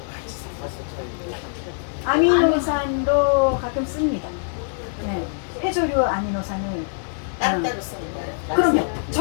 아미노산도 가끔 씁니다. 네. 해조류 아미노산을 따로따로 쓰는 거예요. 그럼요.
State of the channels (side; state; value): right; silent; 63 dB below the other